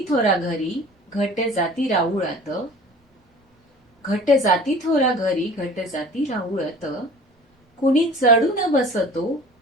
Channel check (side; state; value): both; normal; correlation 0.44